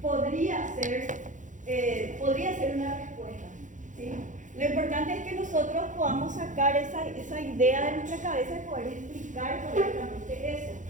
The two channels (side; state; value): left; late; 0.37 ms